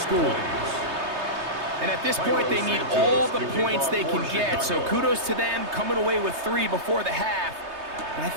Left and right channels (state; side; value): late; left; 3.2 ms